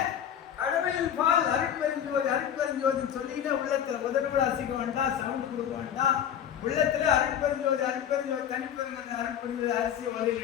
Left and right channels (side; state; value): right; quieter; 9.4 dB